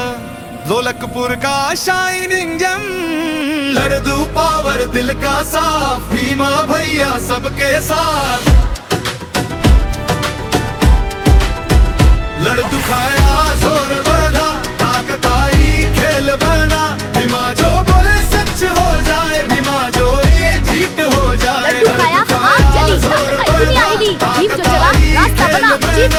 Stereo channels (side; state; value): both; identical; correlation 1.00